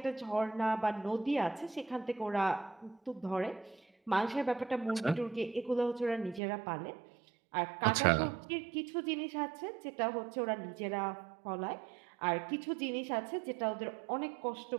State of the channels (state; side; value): drops out; left; at 6.4 s